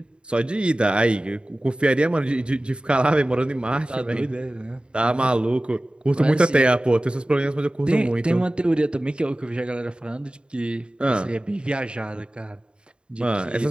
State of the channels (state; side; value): late; left; 0.053 ms